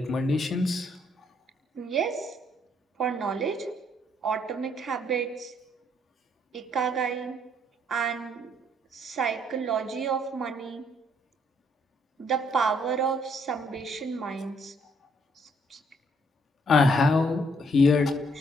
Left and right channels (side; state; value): both; normal; correlation 0.68